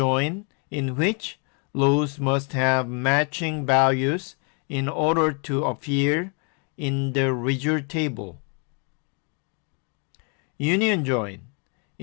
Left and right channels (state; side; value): quieter; right; 38.0 dB